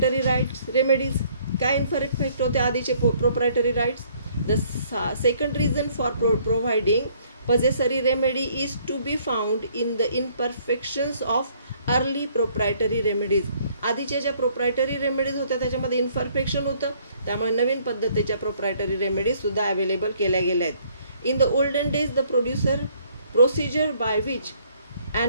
rights remedies. काय इनपरफेक्ट होते आधीचे proprietary rights. The second reason for providing possessory remedy is to be found in the imperfections of early proprietary remedies. आधीच्या ज्या प्रोप्रायटरी रेमेडीज होत्या त्याच्यामध्ये इन्परफेक्शन होतं, त्यामुळे नवीन पद्धतीच्या प्रोप्रायटरी रेमेडीज सुद्धा अवेलेबल केल्या गेल्या आहेत. In the olden days the procedure by which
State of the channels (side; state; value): both; inverted; correlation -0.63